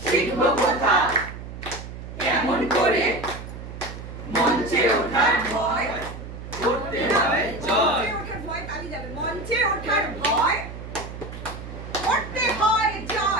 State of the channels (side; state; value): right; noise; hum, 11 dB below the sound